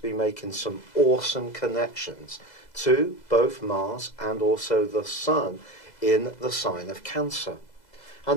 making some awesome connections to both Mars and also the Sun in the sign of Cancer.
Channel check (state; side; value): late; right; 2.0 ms